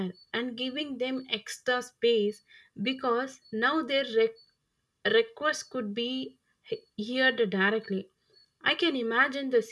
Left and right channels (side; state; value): both; identical; correlation 1.00